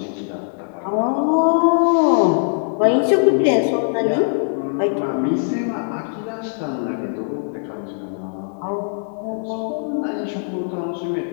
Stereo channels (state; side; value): silent; right; 59 dB below the other